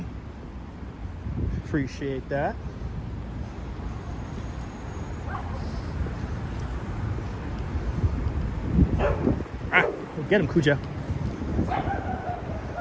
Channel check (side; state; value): both; identical; correlation 1.00